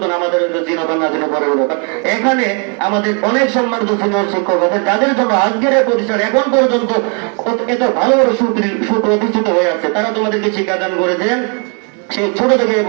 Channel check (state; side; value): quieter; left; 37.9 dB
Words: আমাদের চিনবান না চিনে পরে এখানে আমাদের অনেক সম্মানিত সিনিয়র শিক্ষক আছে, যাদের জন্য আজকের এই প্রতিষ্ঠান এখন পর্যন্ত এত ভালোভাবে সুপ্রতিষ্ঠিত হয়ে আছে। তারা তোমাদেরকে শিক্ষাদান করেছেন সেই ছোট থেকে এ